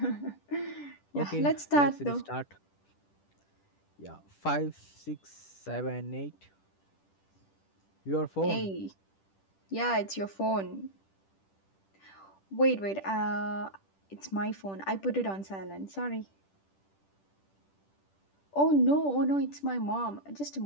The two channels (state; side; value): late; right; 10 ms